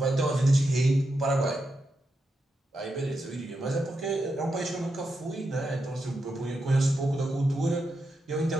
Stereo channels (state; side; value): normal; both; correlation 0.86